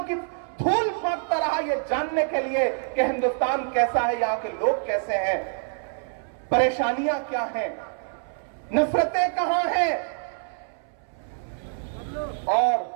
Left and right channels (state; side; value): silent; left; 61 dB below the other